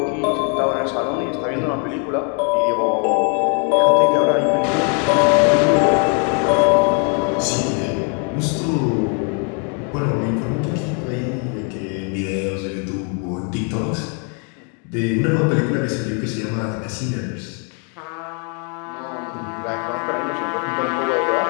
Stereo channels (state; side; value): quieter; right; 38.9 dB